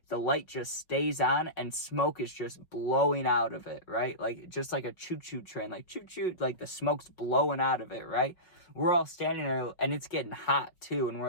the light just stays on and smoke is just blowing out of it, right? Just like a choo-choo train, choo-choo, the smoke's blowing out of it, right? We're all standing there and it's getting hot too. And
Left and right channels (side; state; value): right; late; 5.4 ms